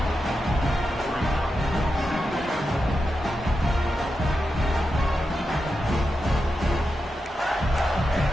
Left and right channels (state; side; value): normal; both; correlation 0.89